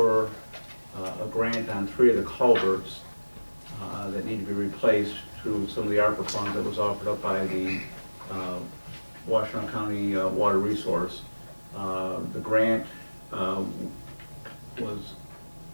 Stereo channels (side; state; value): both; inverted; correlation -1.00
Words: a grant on 3 of the culverts that need to be replaced through some of the ARPA funds that was offered up by the Washtenaw County Water Resource. The grant was